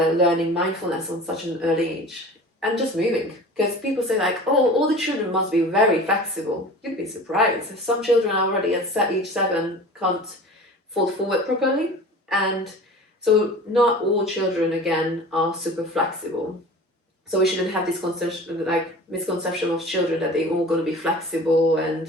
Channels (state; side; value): normal; both; correlation 0.39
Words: mindfulness on such an early age. And just moving, because people say like, oh, all the children must be very flexible. You'd be surprised. Some children already at age 7 can't fold forward properly, and so not all children again are super flexible. So we shouldn't have this misconception of children that they're all going to be flexible